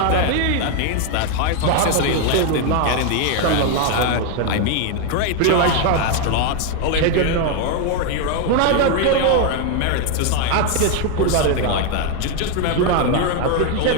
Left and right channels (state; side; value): different; both; correlation 0.01